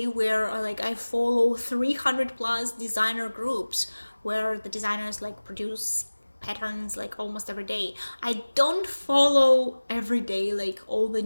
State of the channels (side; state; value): both; inverted; correlation -1.00